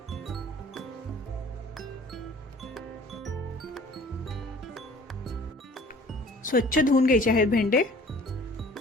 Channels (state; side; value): normal; both; correlation 0.50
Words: स्वच्छ धुवून घ्यायचे आहेत भेंडे.